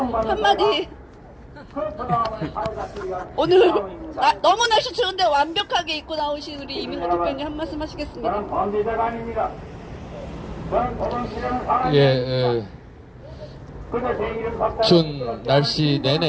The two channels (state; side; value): identical; both; correlation 1.00